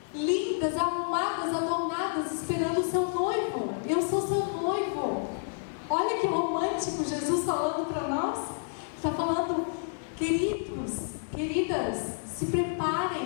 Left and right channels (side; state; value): right; silent; digital silence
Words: lindas, arrumadas, adornadas, esperando o seu noivo. Eu sou seu noivo. Olha que romântico Jesus falando para nós. Está falando, queridos, queridas, se preparem.